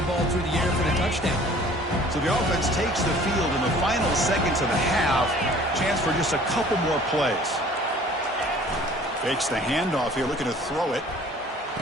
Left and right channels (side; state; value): both; normal; correlation 0.51